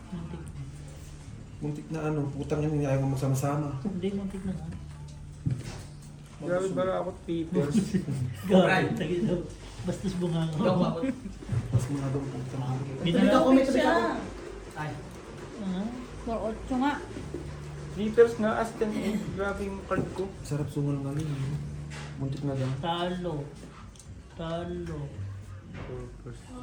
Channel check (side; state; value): both; identical; correlation 1.00